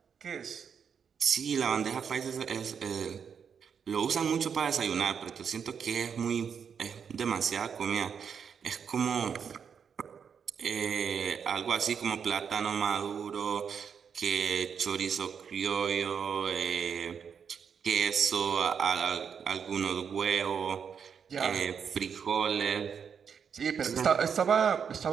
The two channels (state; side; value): quieter; left; 7.0 dB